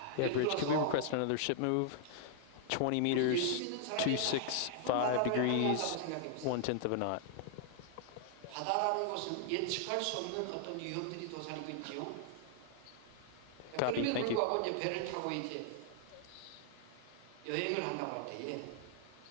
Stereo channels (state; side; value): different; both; correlation 0.00